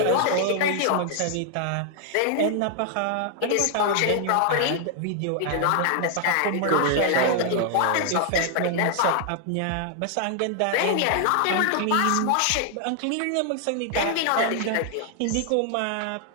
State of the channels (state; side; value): different; both; correlation 0.00